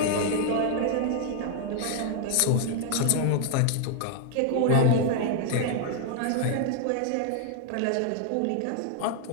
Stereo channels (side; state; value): both; different; correlation 0.00